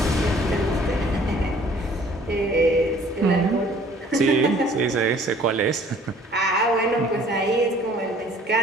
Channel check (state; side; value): normal; both; correlation 0.55